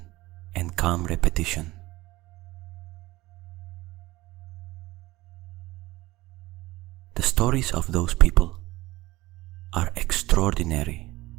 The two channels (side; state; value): left; quieter; 18.8 dB